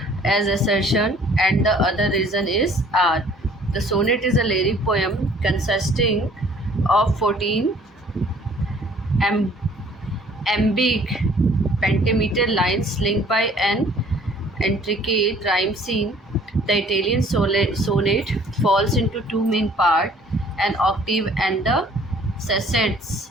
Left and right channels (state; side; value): normal; both; correlation 0.55